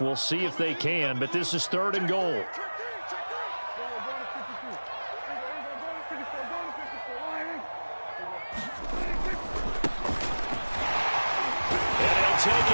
We'll see if they can, but this is 3rd and goal. And he'll take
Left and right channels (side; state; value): both; inverted; correlation -1.00